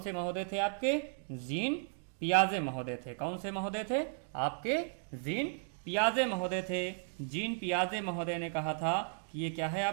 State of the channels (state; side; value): silent; left; 54 dB below the other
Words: महोदय थे आपके? जीन पियाजे महोदय थे। कौन से महोदय थे? आपके जीन पियाजे महोदय थे। जीन पियाजे महोदय ने कहा था कि ये क्या है